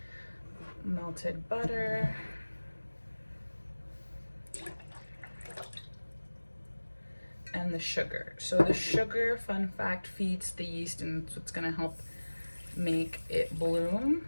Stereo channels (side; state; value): both; inverted; correlation -1.00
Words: Melted butter. And the sugar. So the sugar, fun fact, feeds the yeast and it's what's gonna help make it